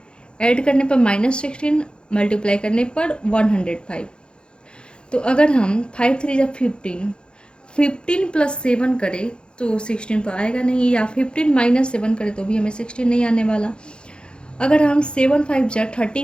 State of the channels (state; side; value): late; right; 0.052 ms